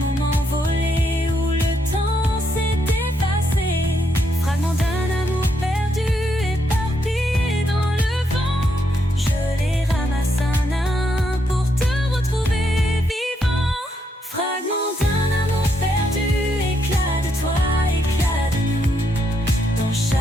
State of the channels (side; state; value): both; normal; correlation 0.77